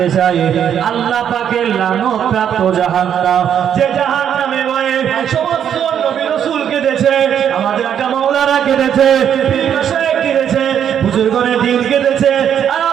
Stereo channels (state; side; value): quieter; left; 9.0 dB